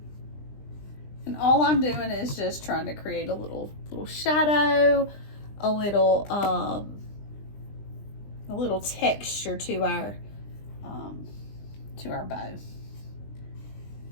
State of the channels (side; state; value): right; late; 20 ms